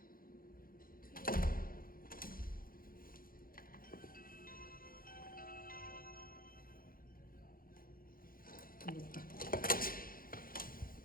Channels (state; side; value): late; right; 0.42 ms